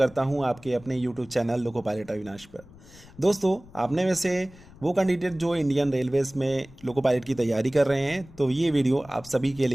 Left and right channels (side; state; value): left; noise; rumble, 22 dB below the sound